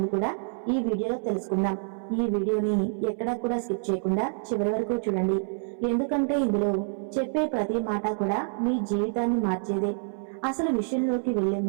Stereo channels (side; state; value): left; silent; 60 dB below the other